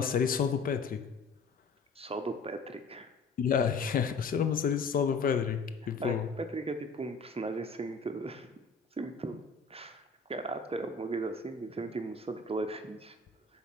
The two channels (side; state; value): right; quieter; 4.1 dB